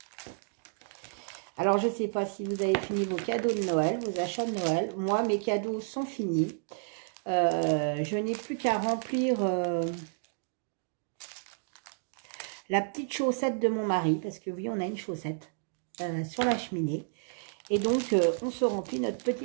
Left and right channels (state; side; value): silent; left; digital silence